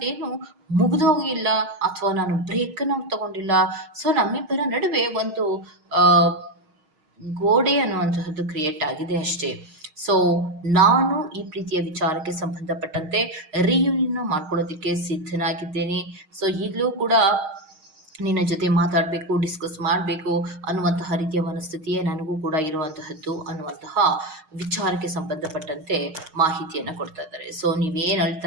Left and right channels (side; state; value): left; late; 6.4 ms